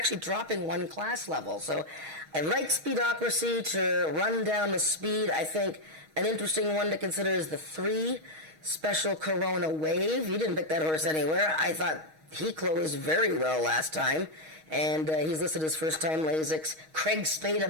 dropping 1 class level. So I like Speedocracy to run down the speed. I think an interesting one to consider is the 3 Special Corona Wave. You didn't pick that horse anywhere. I thought he closed very well last time. And he's listed as first-time Lasix. Craig Spada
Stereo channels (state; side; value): late; left; 6.3 ms